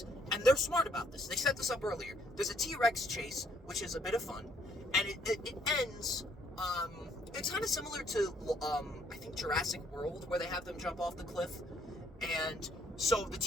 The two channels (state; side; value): normal; both; correlation 0.67